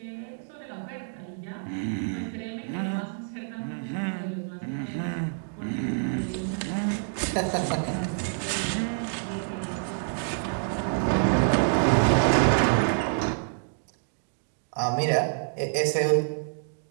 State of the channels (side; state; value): left; silent; digital silence